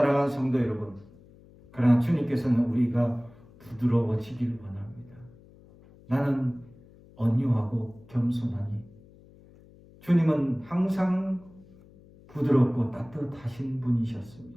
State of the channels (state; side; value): noise; left; hum, 24 dB below the sound